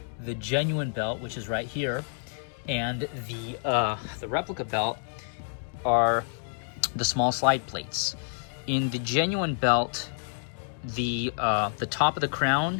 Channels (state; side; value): silent; right; digital silence